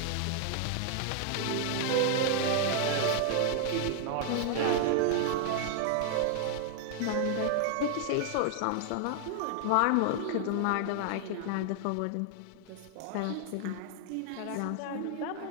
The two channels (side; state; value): both; different; correlation -0.01